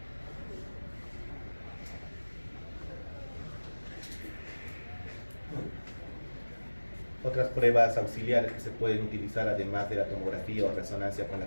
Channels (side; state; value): both; inverted; correlation -1.00